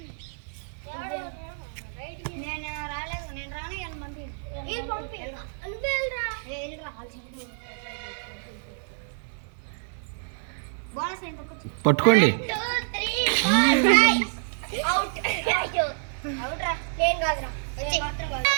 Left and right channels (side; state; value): left; silent; digital silence